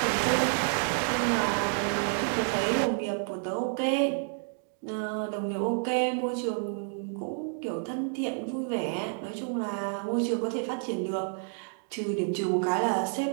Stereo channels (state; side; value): silent; left; 58 dB below the other